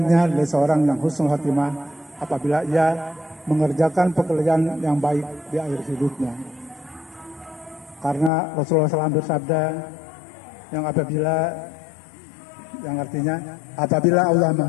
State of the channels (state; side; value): drops out; right; at 8.3 s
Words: adalah seorang yang husnul khotimah apabila ia mengerjakan pekerjaan yang baik di akhir hidupnya. Karena Rasulullah SAW bersabda, yang apabila yang artinya apabila Allah